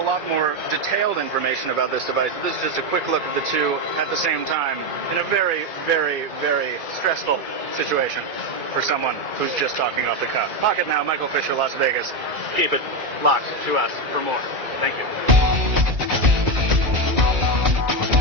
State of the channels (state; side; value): late; left; 2.3 ms